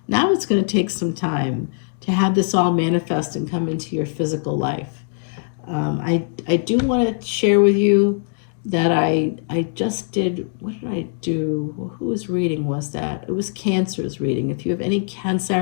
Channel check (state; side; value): silent; right; digital silence